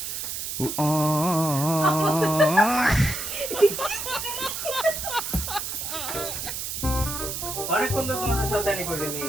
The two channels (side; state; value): right; noise; hiss, 5 dB below the sound